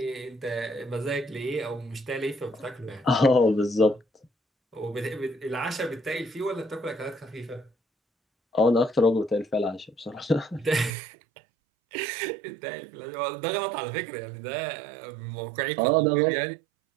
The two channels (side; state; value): left; drops out; at 10.9 s